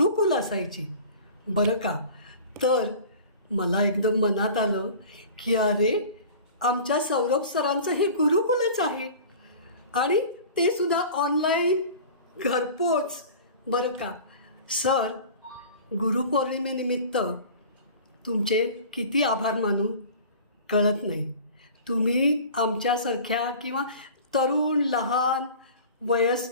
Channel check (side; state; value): both; inverted; correlation -0.40